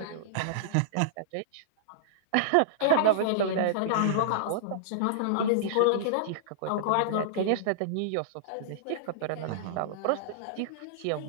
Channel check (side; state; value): both; different; correlation -0.02